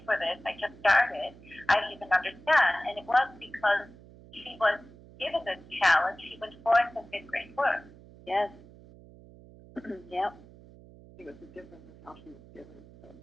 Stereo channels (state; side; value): noise; right; hum, 21 dB below the sound